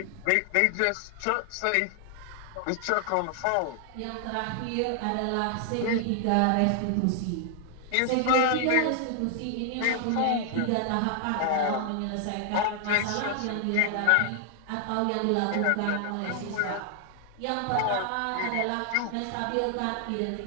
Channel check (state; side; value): different; both; correlation 0.00